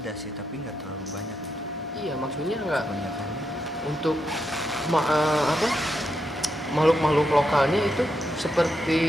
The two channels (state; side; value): normal; both; correlation 0.83